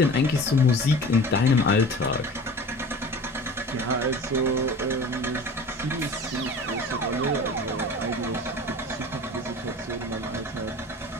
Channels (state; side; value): normal; both; correlation 0.39